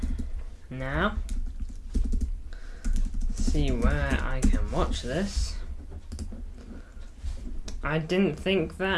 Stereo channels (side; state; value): both; identical; correlation 1.00